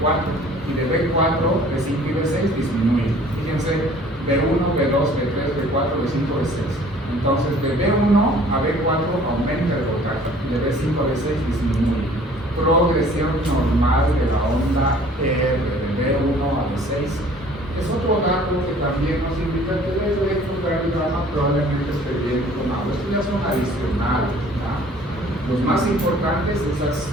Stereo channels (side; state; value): both; normal; correlation 0.53